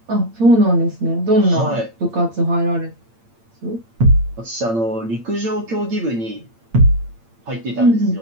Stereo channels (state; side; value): late; left; 8.8 ms